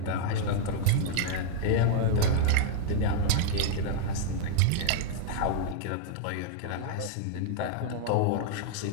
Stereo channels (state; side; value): different; both; correlation -0.01